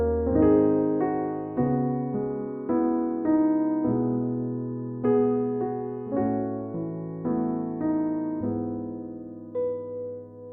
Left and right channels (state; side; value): identical; both; correlation 1.00